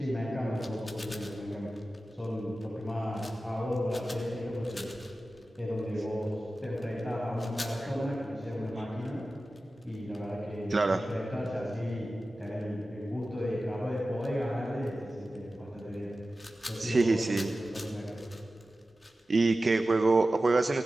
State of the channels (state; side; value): normal; both; correlation 0.95